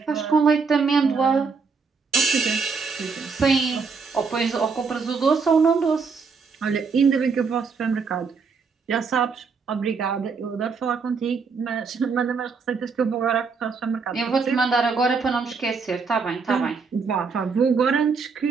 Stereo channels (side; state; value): left; quieter; 5.1 dB